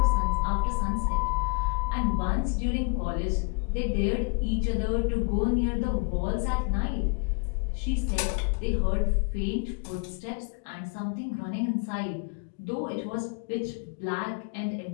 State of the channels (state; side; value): quieter; right; 36.5 dB